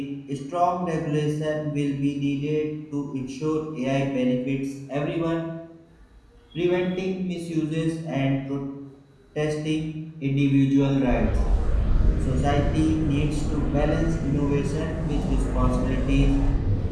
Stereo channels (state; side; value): identical; both; correlation 1.00